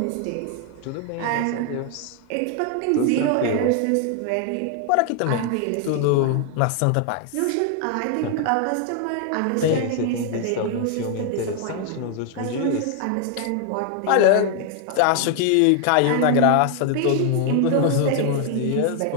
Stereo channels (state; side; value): different; both; correlation 0.00